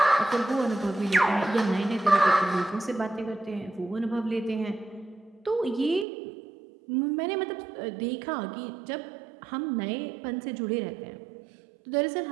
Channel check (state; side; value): drops out; left; at 6.1 s